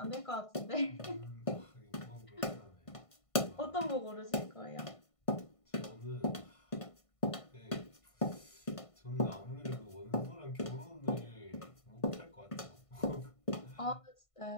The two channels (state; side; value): late; right; 1.5 ms